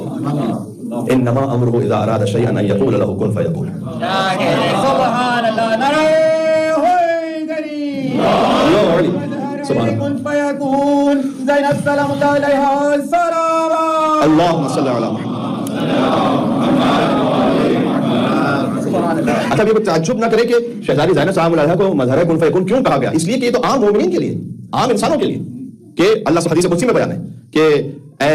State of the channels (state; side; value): identical; both; correlation 1.00